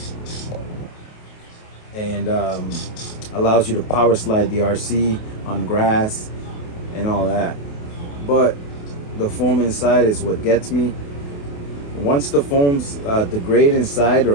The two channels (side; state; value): right; late; 28 ms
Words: allows you to power slide the RC on grass and all that. But the foam inside is what gets me. Once the foams degrade inside